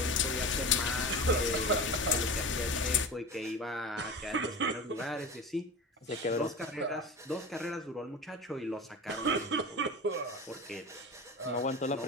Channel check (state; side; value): normal; both; correlation 0.30